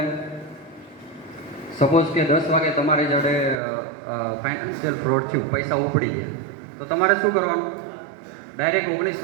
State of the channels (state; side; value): drops out; left; at 3.6 s